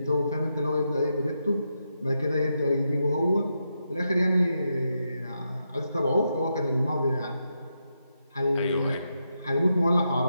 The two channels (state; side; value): inverted; both; correlation -0.84